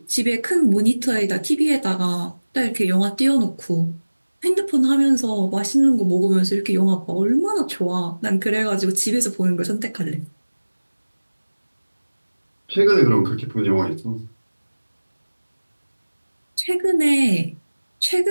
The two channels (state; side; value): inverted; both; correlation -1.00